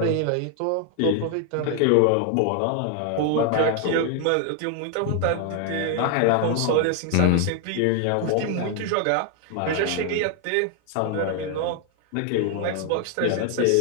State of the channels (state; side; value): different; both; correlation 0.00